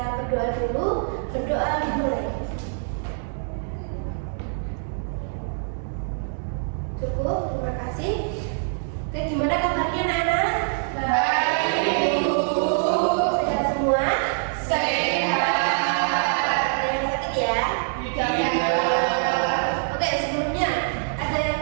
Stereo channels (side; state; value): left; silent; digital silence